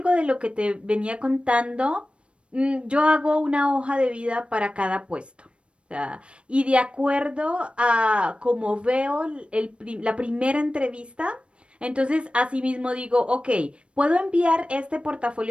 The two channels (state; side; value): late; left; 0.059 ms